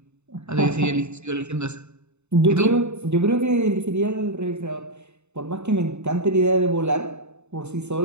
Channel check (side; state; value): left; late; 0.82 ms